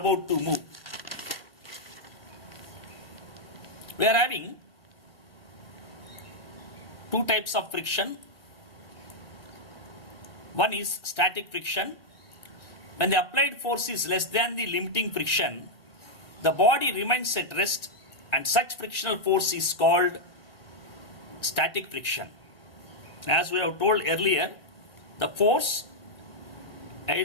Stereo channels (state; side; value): late; right; 1.7 ms